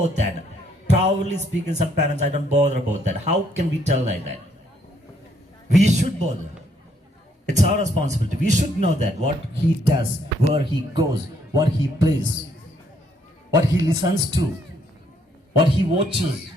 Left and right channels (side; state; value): both; normal; correlation 0.70